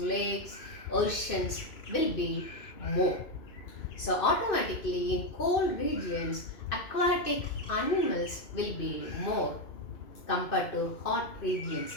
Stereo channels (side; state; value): right; late; 2.6 ms